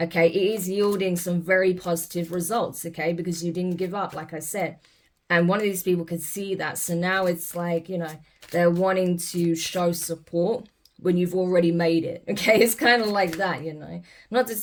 it is yielding some very positive results, okay, because you didn't give up, like I said. And one of these people could see that. So now it's like, you know, they're wanting to show support when you've already made it, okay? It's kind of like that, you know. Not to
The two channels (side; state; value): both; identical; correlation 1.00